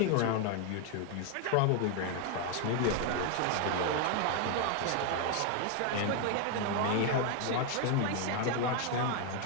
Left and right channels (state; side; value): different; both; correlation 0.01